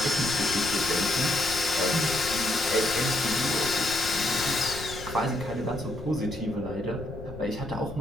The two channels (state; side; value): noise; left; rumble, 12 dB below the sound